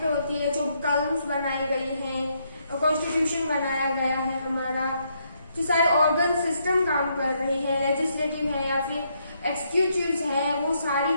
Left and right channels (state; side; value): inverted; both; correlation -0.75